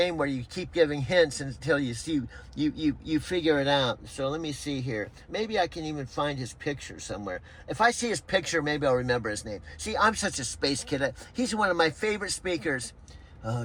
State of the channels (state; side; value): identical; both; correlation 1.00